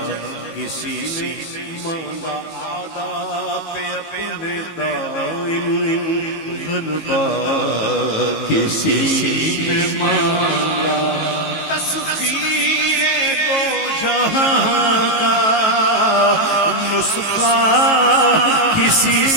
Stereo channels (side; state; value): right; late; 18 ms